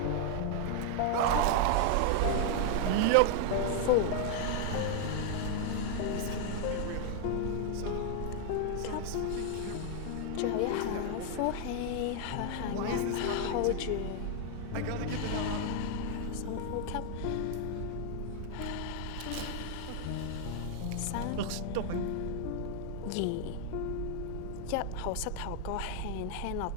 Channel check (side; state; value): both; different; correlation 0.00